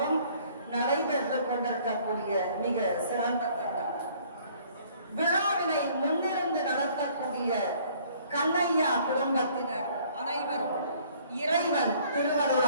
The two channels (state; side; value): inverted; both; correlation -0.58